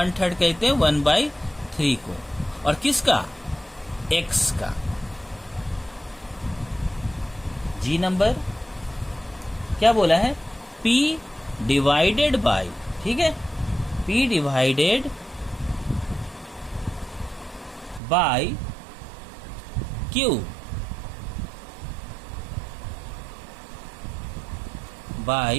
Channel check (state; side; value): drops out; left; at 18.0 s